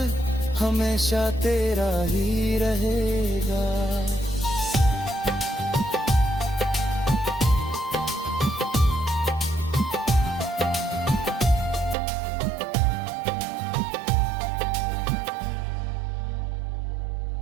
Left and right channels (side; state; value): left; drops out; at 12.0 s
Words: हमेशा तेरा ही रहेगा।